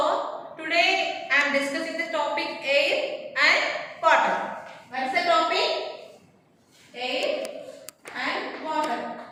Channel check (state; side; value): identical; both; correlation 1.00